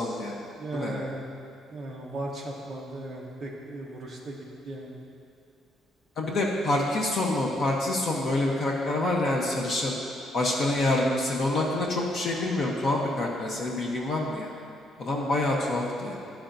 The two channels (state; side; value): normal; both; correlation 0.73